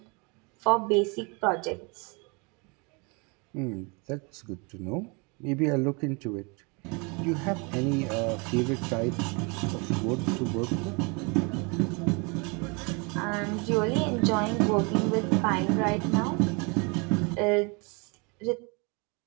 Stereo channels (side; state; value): left; quieter; 31.1 dB